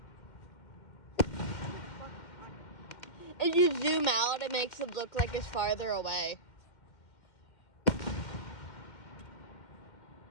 If you zoom out, it makes it look like it's farther away.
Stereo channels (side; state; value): right; late; 2.1 ms